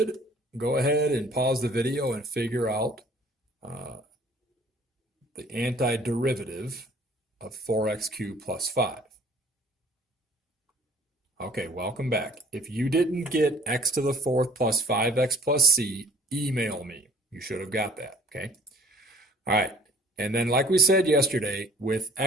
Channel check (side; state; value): both; normal; correlation 0.54